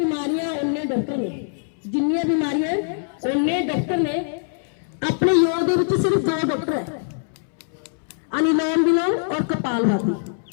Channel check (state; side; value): silent; right; 64 dB below the other